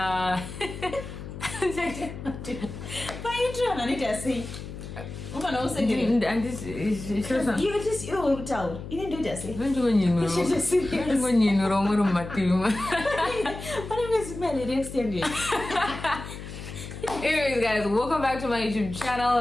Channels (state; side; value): noise; left; hum, 10 dB below the sound